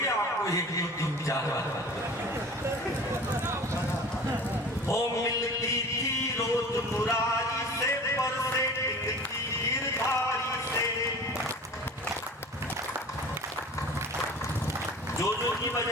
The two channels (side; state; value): both; normal; correlation 0.41